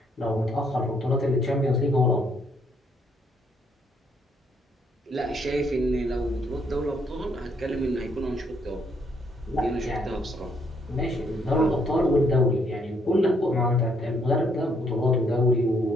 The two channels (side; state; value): both; normal; correlation 0.71